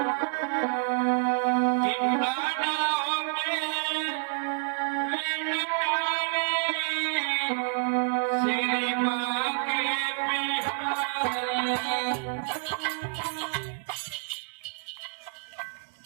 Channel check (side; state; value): left; silent; digital silence